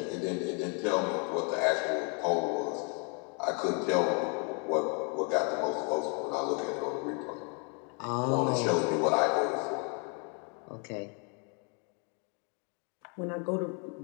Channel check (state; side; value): quieter; right; 36.5 dB